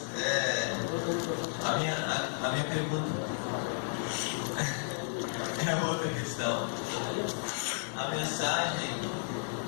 a minha pergunta é outra questão. A mensagem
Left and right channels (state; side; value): silent; right; digital silence